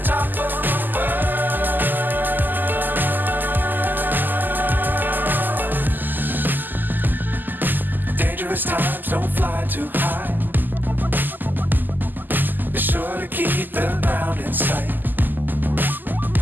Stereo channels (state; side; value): late; left; 0.088 ms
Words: Times don't fly too high. Be sure to keep the ground in sight.